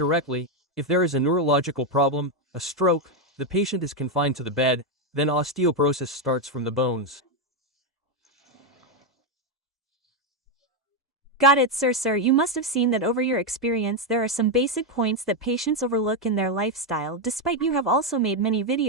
If there is a neurological problem, a stroke, the patient is confined to the bed, then osteoporosis starts from the bones. Got it, sir. You must have seen that over your experience there are some basic points that patients overlook in their lifestyle. Despite you have also made many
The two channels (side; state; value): both; normal; correlation 0.04